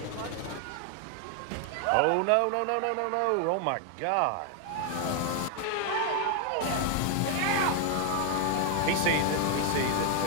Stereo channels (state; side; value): different; both; correlation 0.00